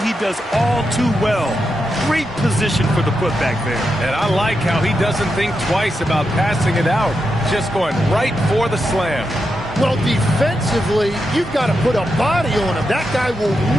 he does all too well. Great position for the putback there. And I like how he doesn't think twice about passing it out. Just going right for the slam. Well, defensively, you've got to put a body on him. That guy will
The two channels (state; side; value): normal; both; correlation 0.86